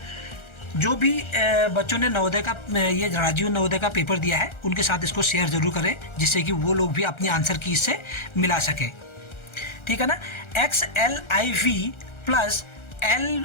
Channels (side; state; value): right; late; 1.4 ms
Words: जो भी बच्चों ने नवोदय का ये राजीव नवोदय का पेपर दिया है उनके साथ इसको शेयर ज़रूर करें, जिससे कि वो लोग भी अपनी आंसर की इससे मिला सकें। ठीक है ना। XLIV प्लस